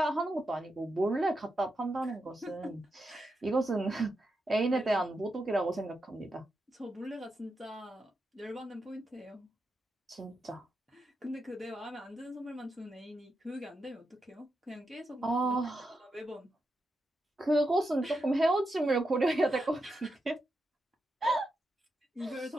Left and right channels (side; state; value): both; normal; correlation 0.86